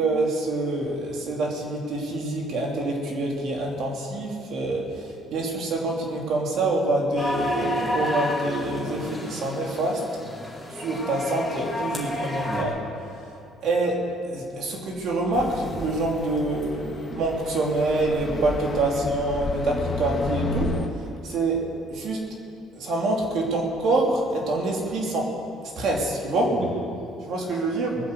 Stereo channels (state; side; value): normal; both; correlation 0.60